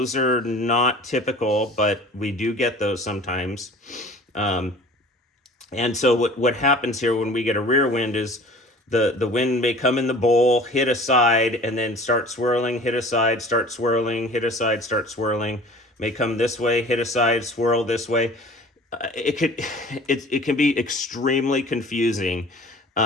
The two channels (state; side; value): normal; both; correlation 0.44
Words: are not typical, but we do get those sometimes. And so what happens here when we get a rear wind is the wind may come in the bowl, hit a side, and then start swirling, hit a side, start swirling, hit a side, start swirling. May come this way, hit a side, swirl this way. It can be extremely confusing.